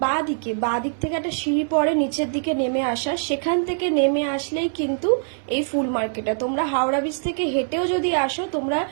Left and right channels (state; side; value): silent; left; 63 dB below the other